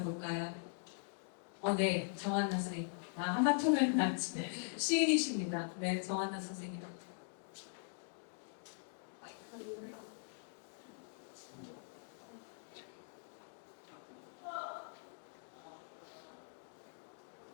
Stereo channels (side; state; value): right; silent; digital silence